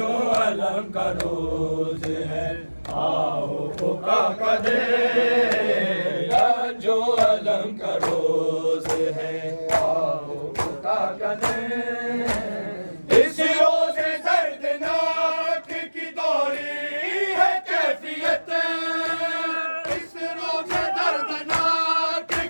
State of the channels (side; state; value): both; inverted; correlation -1.00